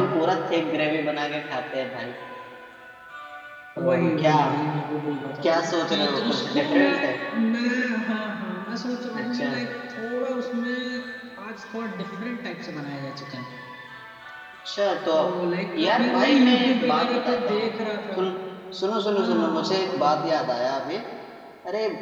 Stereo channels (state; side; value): identical; both; correlation 1.00